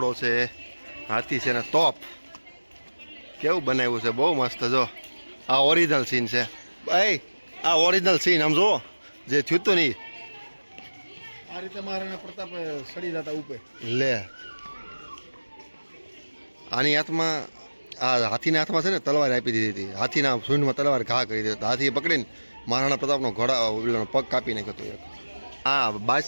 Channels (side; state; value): both; inverted; correlation -1.00